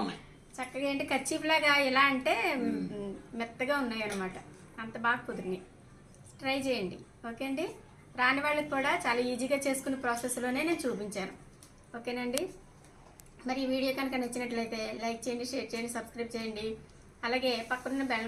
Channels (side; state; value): both; identical; correlation 1.00